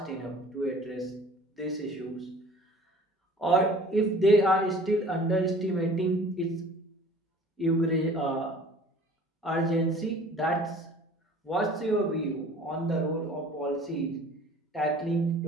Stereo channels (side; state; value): both; normal; correlation 0.48